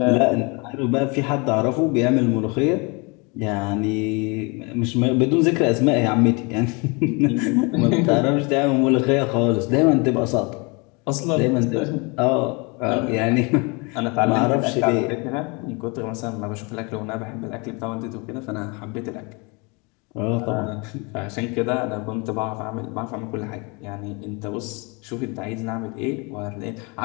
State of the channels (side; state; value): right; quieter; 29.8 dB